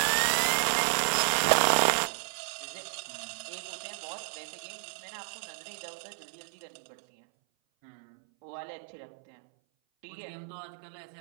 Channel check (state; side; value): silent; left; 57 dB below the other